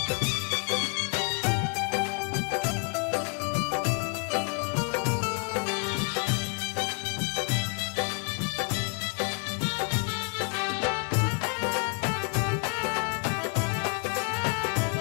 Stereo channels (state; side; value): quieter; right; 36.9 dB